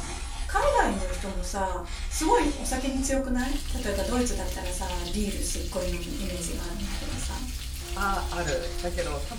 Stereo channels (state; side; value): identical; both; correlation 1.00